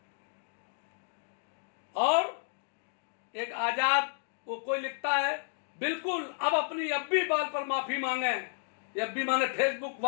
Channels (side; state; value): right; silent; digital silence